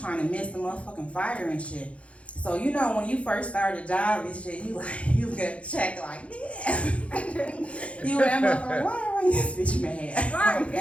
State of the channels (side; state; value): right; late; 0.062 ms